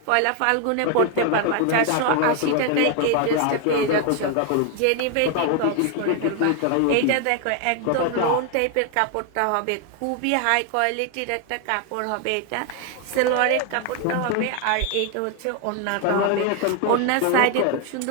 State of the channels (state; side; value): different; both; correlation 0.01